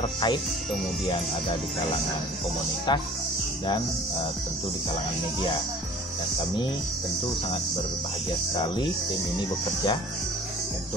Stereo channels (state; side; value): normal; both; correlation 0.47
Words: kemudian ada di kalangan komunitas dan tentu di kalangan media. Dan kami tentu sangat berbahagia sekali tim ini bekerja